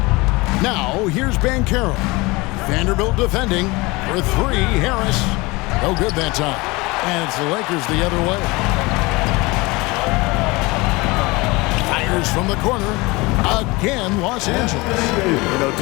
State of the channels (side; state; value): right; quieter; 23.8 dB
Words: Now here's Markelle. Vanderbilt defending for 3. Harris. No good that time. And it's the Lakers the other way. Fires from the corner. Again, Los Angeles. You know,